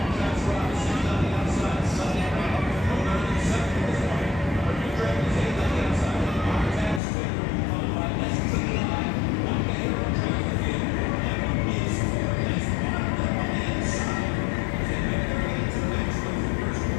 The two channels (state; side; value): drops out; right; at 7.0 s